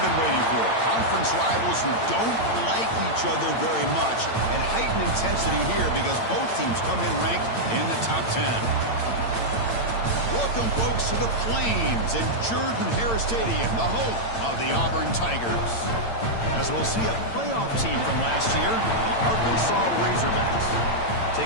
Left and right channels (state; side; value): late; right; 8.8 ms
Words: been waiting for. Conference rivals who don't like each other very much, and heightened intensity here because both teams come in ranked in the top 10. Welcome, folks, to the Plains in Jordan-Hare Stadium, the home of the Auburn Tigers. As we'll see a playoff team from last year, the Arkansas Razorbacks,